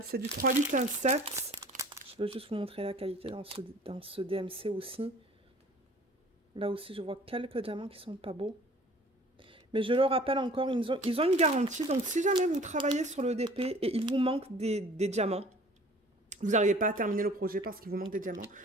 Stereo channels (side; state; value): both; normal; correlation 0.49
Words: C'est du 3817. Je veux juste vous montrer la qualité dans ce DMC aussi. Là aussi, je vois quelques diamants qui sont pas beaux. Mais je le rappelle encore, ils ont une garantie. Donc, si jamais vous travaillez sur le DP et il vous manque des diamants, vous n'arrivez pas à terminer le projet parce qu'il vous manque des diamants,